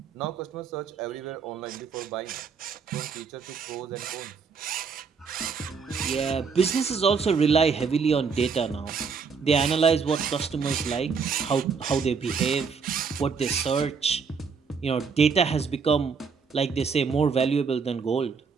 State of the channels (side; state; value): left; quieter; 5.6 dB